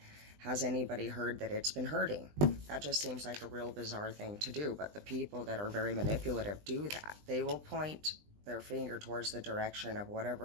Has anybody heard that it's been hurting? That just seems like a real bizarre thing to do. But the people that are very manipulative do that. They will point their finger towards the direction of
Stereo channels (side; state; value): left; late; 20 ms